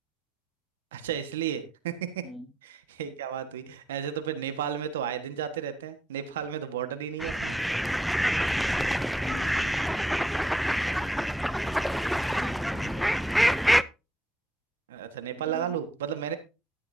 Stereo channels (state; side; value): normal; both; correlation 0.75